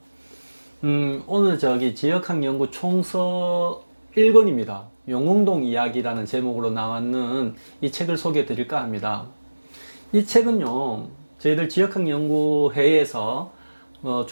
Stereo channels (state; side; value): inverted; both; correlation -1.00